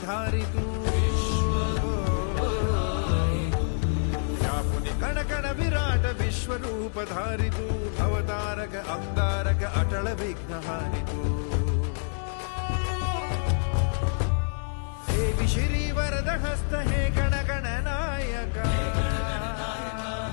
धारी तू व्यापुनि कण कण विराट विश्वरूप धारी तू भवतारक अंगारक अटल विघ्नहारि तू हे श्री वरद हस्त हे गण गण नायका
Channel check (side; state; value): right; silent; digital silence